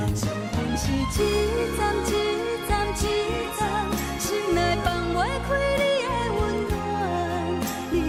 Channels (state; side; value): identical; both; correlation 1.00